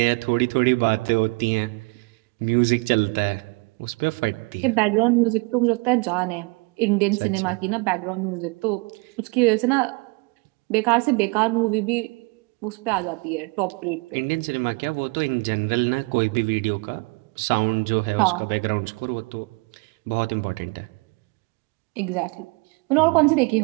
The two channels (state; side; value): quieter; left; 29.1 dB